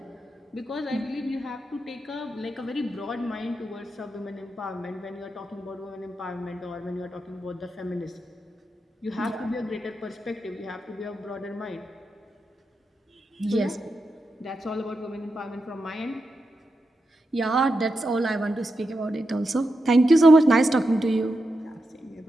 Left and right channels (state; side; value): normal; both; correlation 0.87